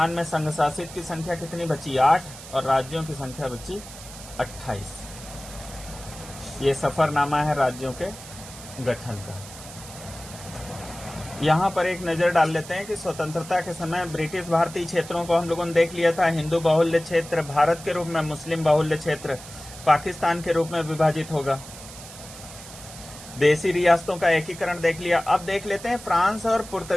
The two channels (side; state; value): right; noise; hiss, 15 dB below the sound